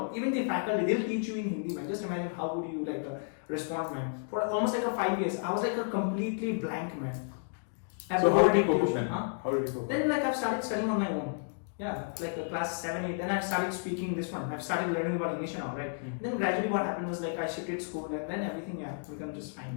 Even the faculty, they'll teach you in Hindi, man. Just imagine how would you respond, man. For almost 5 years, I was a completely blank man. I have So to how go did you to cope up tuition, then? huh? How did you cope up? Then like I've started studying on my own. Yeah, like class 7, 8. Then I started speaking this one. I've started learning about English now, right? Then gradually what happened was like I shifted school and then everything become just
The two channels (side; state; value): right; silent; digital silence